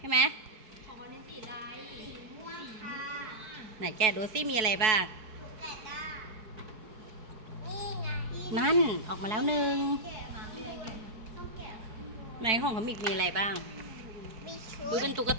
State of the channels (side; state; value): left; late; 4.6 ms